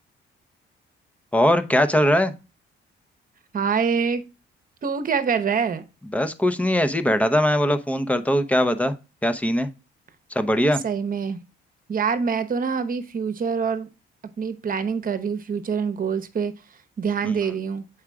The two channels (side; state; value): both; normal; correlation 0.72